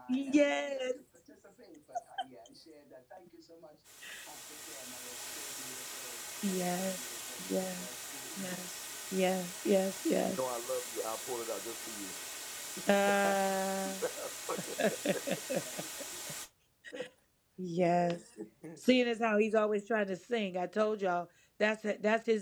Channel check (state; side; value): identical; both; correlation 1.00